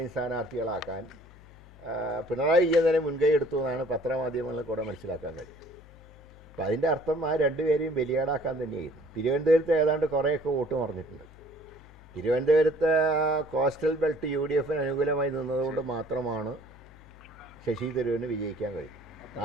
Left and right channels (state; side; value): noise; left; hum, 21 dB below the sound